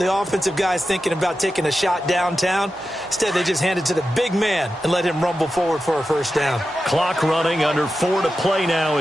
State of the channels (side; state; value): both; normal; correlation 0.91